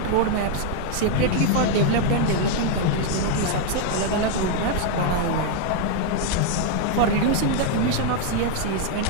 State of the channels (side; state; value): both; different; correlation 0.00